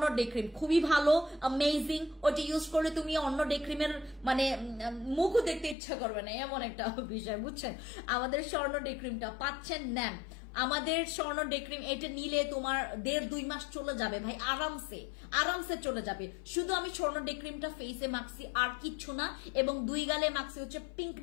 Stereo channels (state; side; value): drops out; right; at 5.8 s